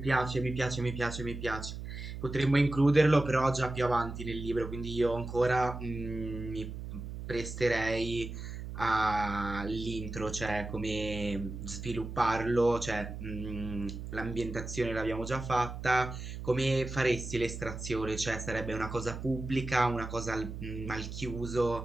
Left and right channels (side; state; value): right; noise; hum, 8 dB below the sound